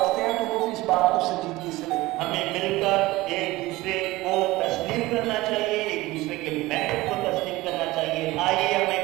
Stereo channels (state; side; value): quieter; left; 19.2 dB